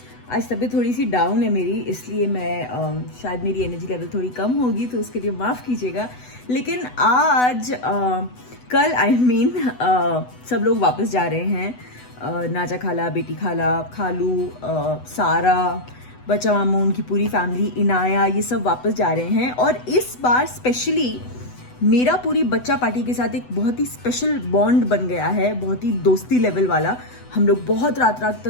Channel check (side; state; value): right; late; 8.0 ms